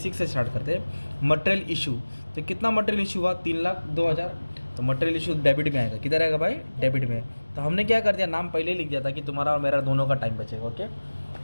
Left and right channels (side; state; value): both; inverted; correlation -1.00